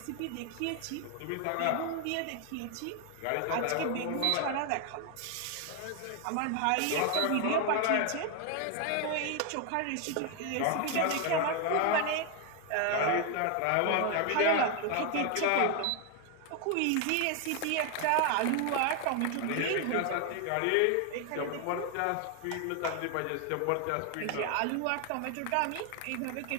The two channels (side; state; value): both; different; correlation 0.01